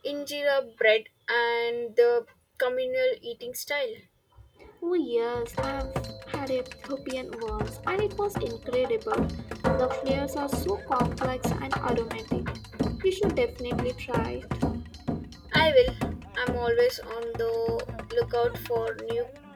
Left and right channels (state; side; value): identical; both; correlation 1.00